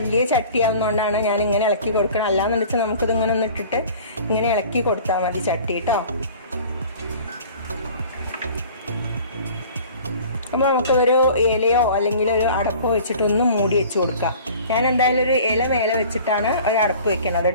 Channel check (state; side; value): inverted; both; correlation -0.45